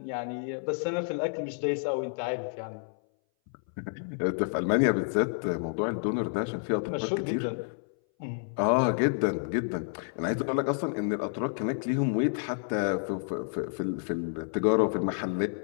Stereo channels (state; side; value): silent; right; 58 dB below the other